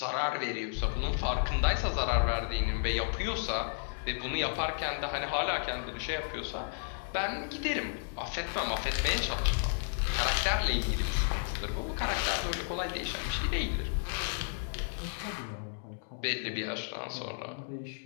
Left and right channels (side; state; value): right; silent; digital silence